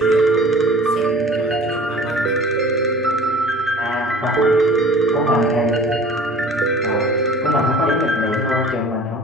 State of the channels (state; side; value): normal; both; correlation 0.45